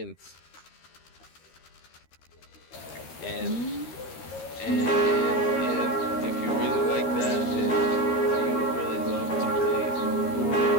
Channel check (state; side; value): late; right; 13 ms